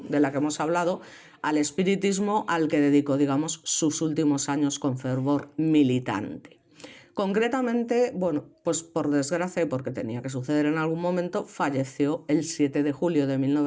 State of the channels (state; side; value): identical; both; correlation 1.00